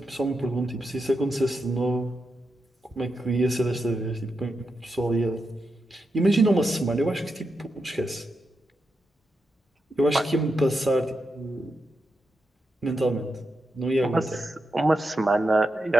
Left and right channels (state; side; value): normal; both; correlation 0.86